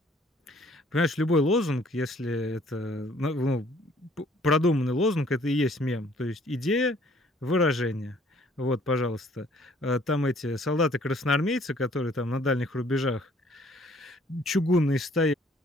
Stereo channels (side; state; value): both; normal; correlation 0.59